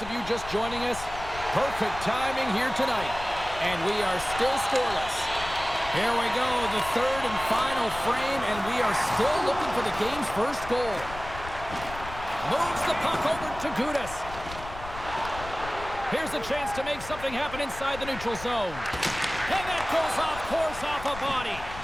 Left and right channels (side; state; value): left; noise; rumble, 13 dB below the sound